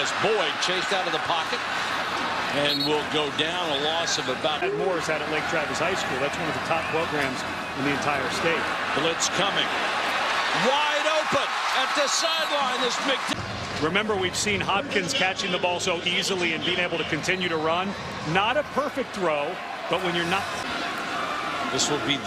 Boyd chased out of the pocket and will go down a loss of about. Morris out at Lake Travis High School. That's one of the top programs in the entire state. Blitz coming. Wide open at the sideline. This big. Remember, we've seen Hopkins catching the ball so easily and being able to continue to run. Not a perfect throw, but when you're not. This will be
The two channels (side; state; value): both; identical; correlation 1.00